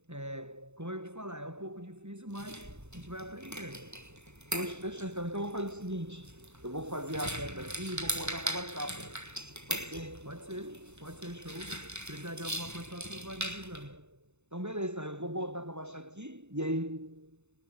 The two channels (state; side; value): late; left; 0.82 ms